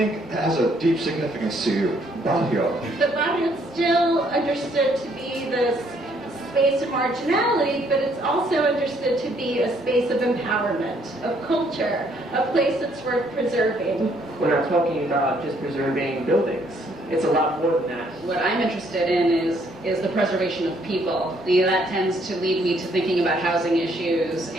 has a deep significance to you, Barrio. But Barrio is still understood to be this space of marginality, but it's also understood to be a space of empowerment, of culture, a place that's worth preserving. We're not talking about just preserving buildings. It's a lot more than that. What I'm interested in is the preservation of people. That tends to lead me to thinking about housing issues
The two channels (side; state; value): both; normal; correlation 0.67